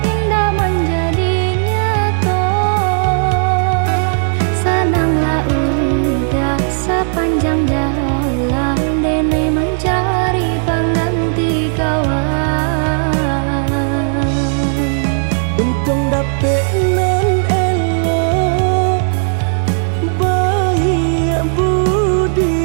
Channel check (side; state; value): left; silent; digital silence